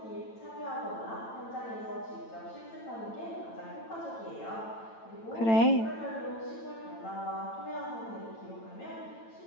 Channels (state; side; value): late; right; 8.9 ms